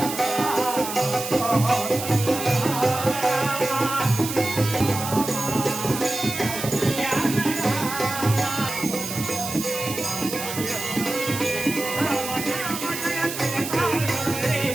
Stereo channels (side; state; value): right; noise; hiss, 7 dB below the sound